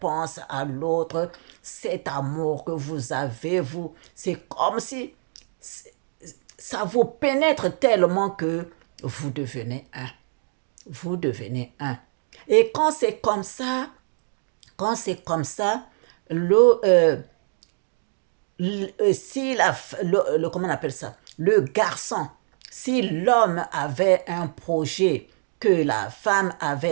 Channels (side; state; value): left; silent; digital silence